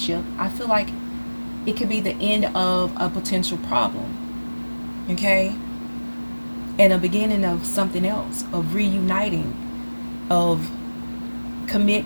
I feel like it could be the end of a potential problem. Okay? And a beginning of something else, of reuniting, of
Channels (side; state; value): both; inverted; correlation -1.00